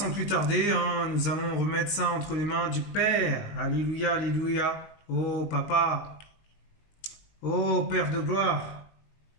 plus tarder, nous allons remettre ça entre les mains du Père. Alléluia, alléluia. Oh, Papa. Oh, Père de gloire.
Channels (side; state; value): right; late; 19 ms